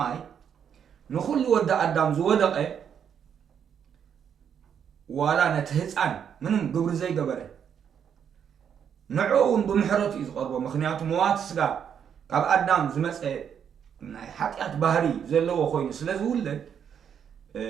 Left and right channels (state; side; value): quieter; left; 8.1 dB